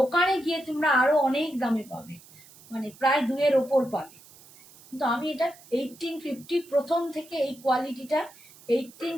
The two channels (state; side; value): noise; right; hiss, 23 dB below the sound